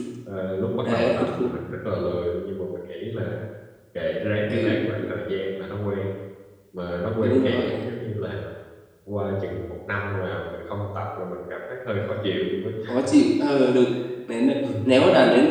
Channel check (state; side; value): identical; both; correlation 1.00